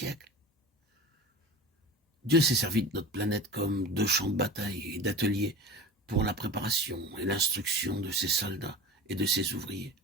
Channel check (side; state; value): both; normal; correlation 0.33